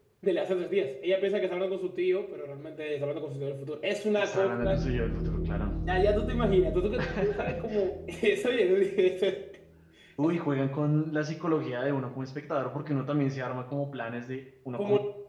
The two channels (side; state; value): both; identical; correlation 1.00